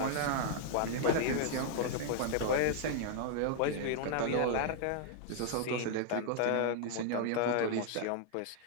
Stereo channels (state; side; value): different; both; correlation 0.00